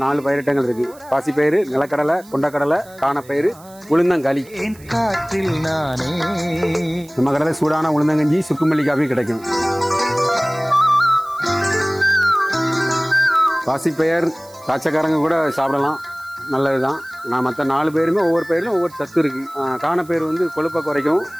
4 பயிரிட்டங்கள் இருக்கு. பாசிப்பயிறு, நிலக்கடலை, கொண்டக்கடலை, காணப்பயிறு, உளுந்தங்களி. காற்றில் நானே. நம்ம கடையில் சூடான உளுந்தங்கஞ்சி, சுக்குமல்லி காஃபி கிடைக்கும். பாசிப்பயிர் காய்ச்சக்காரங்க கூட சாப்பிடலாம், நல்லதுதான். நான் மற்ற 4 பேருமே ஒவ்வொரு பயிரிலும் ஒவ்வொரு சத்து இருக்கு. காணப்பயிர் வந்து கொழுப்பை குறைக்கும்,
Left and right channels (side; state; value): right; noise; hiss, 24 dB below the sound